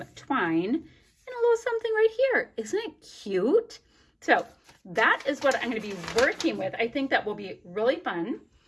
twine, and a little something right here. Isn't it cute? So that is what I'm going to be working with. I think that will be really fun.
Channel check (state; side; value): identical; both; correlation 1.00